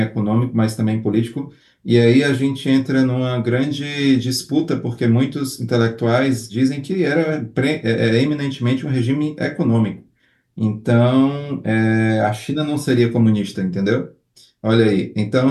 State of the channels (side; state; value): both; identical; correlation 1.00